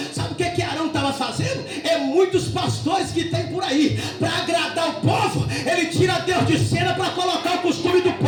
Sabe o que Arão estava fazendo? É muitos pastores que tem por aí, para agradar o povo, ele tira Deus de cena para colocar o costume do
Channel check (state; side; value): identical; both; correlation 1.00